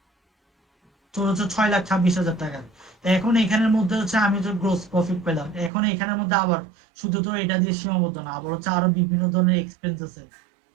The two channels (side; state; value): left; drops out; at 5.7 s